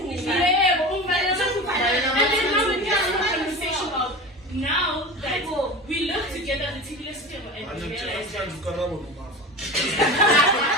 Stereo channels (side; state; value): both; normal; correlation 0.30